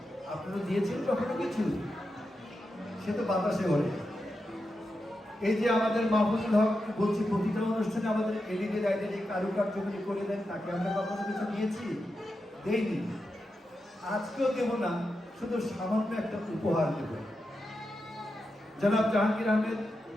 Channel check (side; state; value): both; normal; correlation 0.88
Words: আপনারা দিয়েছেন কখনো কিছু? সে তো বাতাসে ওরে। এই যে আমাদের মাহফুজুল হক বলছি, প্রতিটা অনুষ্ঠানে আমাদের এলইডি লাইটের এই কারুকার্যগুলি করে দেন, তাকে আমরা কখনো কিছু নিয়েছি? দেইনি, আজকেও দেব না, শুধু সামান্য একটা উপহার দেব। জনাব Jahangir Ahmed,